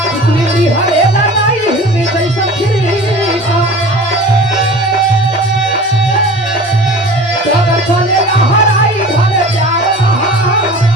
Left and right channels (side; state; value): both; normal; correlation 0.40